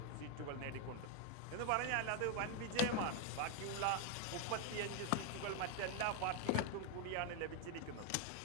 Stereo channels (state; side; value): different; both; correlation 0.01